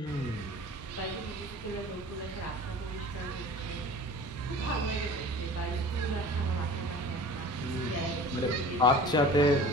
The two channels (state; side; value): normal; both; correlation 0.42